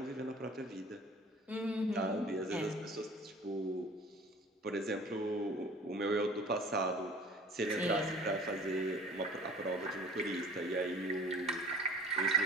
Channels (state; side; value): normal; both; correlation 0.46